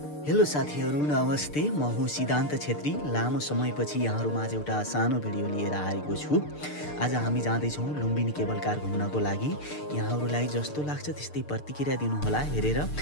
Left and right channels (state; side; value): late; right; 6.7 ms